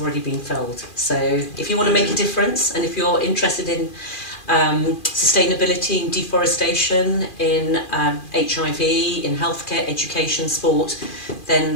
already been filled. So if you want to make a difference, and if you're interested in sustainability, in deforestation, in HIV, in healthcare, education, sport,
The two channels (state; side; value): late; right; 2.4 ms